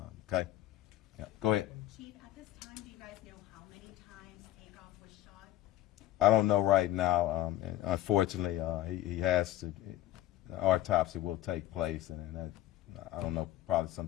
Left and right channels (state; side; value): quieter; right; 14.3 dB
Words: okay? Yeah, go ahead. Chief, at this time, do you guys know how many times Takeoff was shot? I don't know right now. And unfortunately, he has to. The autopsy will take place, and that, I don't know. Probably